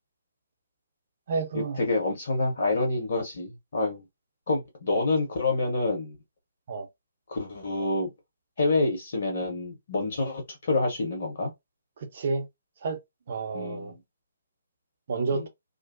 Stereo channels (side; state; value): both; inverted; correlation -0.73